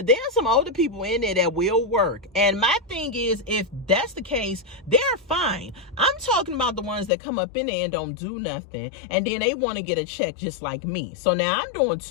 there are some older people in there that will work. And my thing is, if that's the case, they're fine. I'm talking about the ones that come up in there and don't do nothing. And then they want to get a check just like me. So now I'm doing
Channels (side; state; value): right; drops out; at 7.1 s